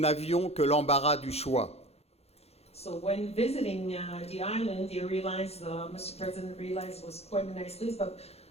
que l'embarras du choix. So when visiting the island, you realized, Mr. President realized it was quite a nice list, but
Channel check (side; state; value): right; late; 0.30 ms